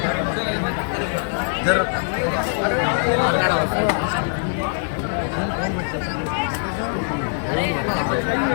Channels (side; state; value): right; silent; digital silence